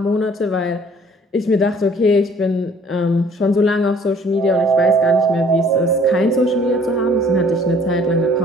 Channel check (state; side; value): normal; both; correlation 0.56